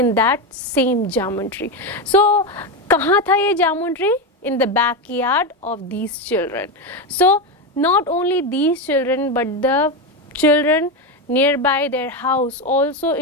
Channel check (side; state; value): both; normal; correlation 0.13